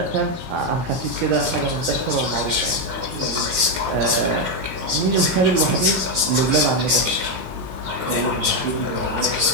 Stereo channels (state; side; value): late; left; 16 ms